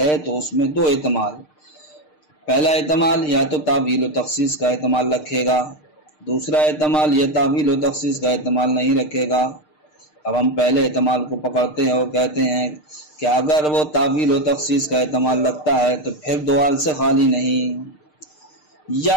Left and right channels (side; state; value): right; late; 6.6 ms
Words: تو اس میں 2 احتمال، پہلا احتمال یا تو تعویل و تخصیص کا احتمال رکھے گا، دوسرا احتمال یا تعویل و تخصیص کا احتمال نہیں رکھے گا۔ اب ہم پہلے احتمال کو پکڑتے ہیں اور کہتے ہیں کہ اگر وہ تعویل و تخصیص کا احتمال رکھتا ہے تو پھر 2 حال سے خالی نہیں،